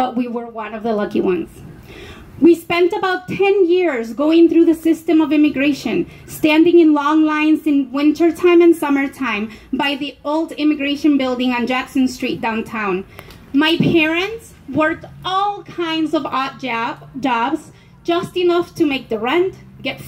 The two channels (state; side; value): identical; both; correlation 1.00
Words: we were one of the lucky ones. We spent about 10 years going through the system of immigration, standing in long lines in wintertime and summertime by the old immigration building on Jackson Street downtown. My parents worked all kinds of odd jobs, just enough to make the rent, get